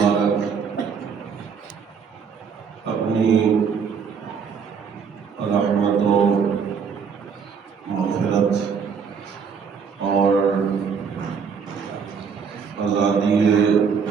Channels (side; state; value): left; quieter; 6.3 dB